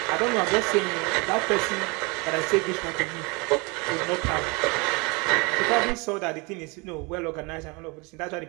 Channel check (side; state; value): left; quieter; 28.5 dB